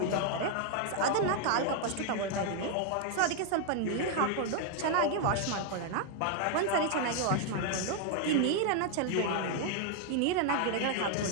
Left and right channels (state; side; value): different; both; correlation 0.00